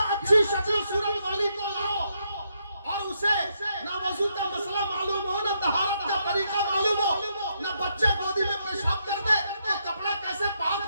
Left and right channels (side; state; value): both; inverted; correlation -0.78